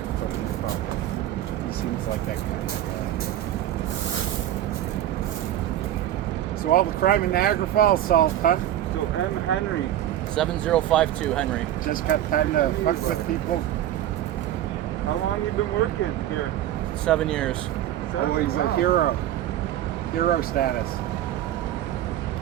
foot in your pocket. He seems like that kind of guy. So all the crime in Niagara Falls solved, huh? So M. Henry, 7052 Henry. Just got time to fuck with people. how long you been working here? 7 years. Oh, he's a Wow. hero. Hero status.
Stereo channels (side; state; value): left; quieter; 12.4 dB